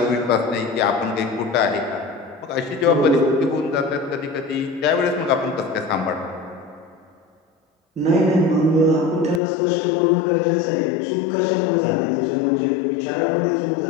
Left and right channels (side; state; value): right; drops out; at 9.4 s